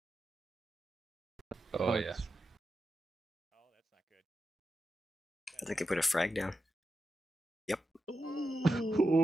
Oh, yeah. I think they put a frag down. Yep.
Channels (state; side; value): normal; both; correlation 0.89